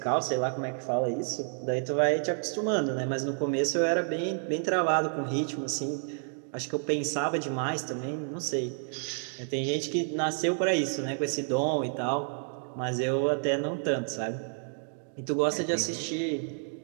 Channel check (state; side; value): silent; left; 58 dB below the other